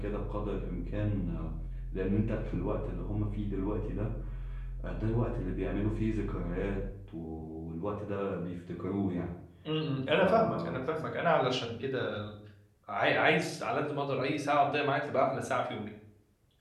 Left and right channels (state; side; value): identical; both; correlation 1.00